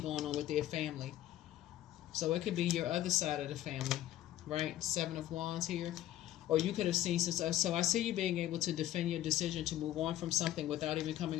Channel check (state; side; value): quieter; right; 13.5 dB